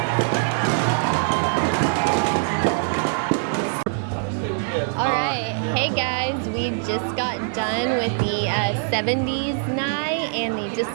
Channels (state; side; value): silent; left; digital silence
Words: All right, hey guys, we just got done with the 70s night and the